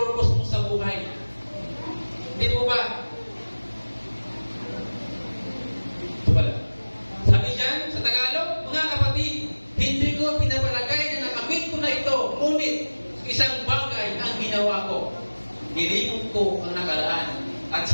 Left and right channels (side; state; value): both; inverted; correlation -1.00